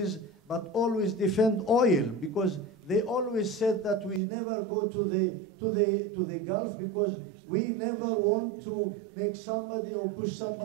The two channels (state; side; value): drops out; left; at 4.2 s